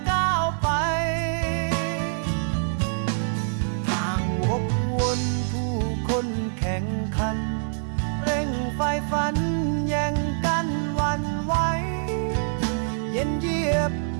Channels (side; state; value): left; silent; digital silence